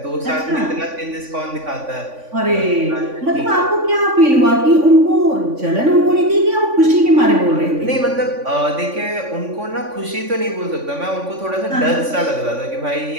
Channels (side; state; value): left; late; 3.5 ms